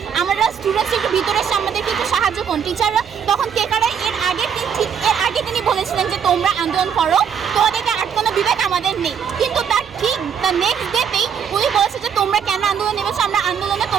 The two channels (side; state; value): left; quieter; 7.6 dB